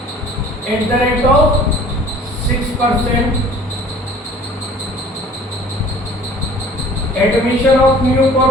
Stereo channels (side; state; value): both; normal; correlation 0.49